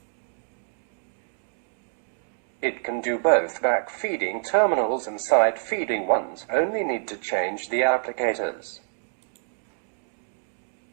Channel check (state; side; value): silent; left; digital silence